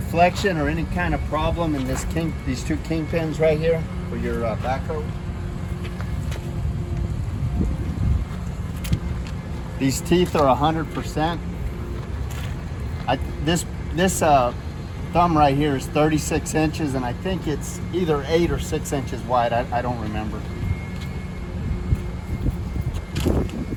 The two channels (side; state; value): both; identical; correlation 1.00